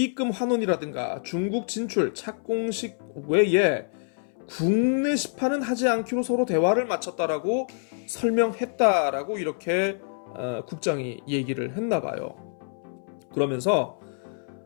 환원이라든가 중국 진출 착공식 외에 국내 시판은 하지 않기로 서로 대화를 마쳤다라고 설명했다라고 이렇게 국장이 얘기를 했나 봐요. 그러면서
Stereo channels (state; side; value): silent; right; 61 dB below the other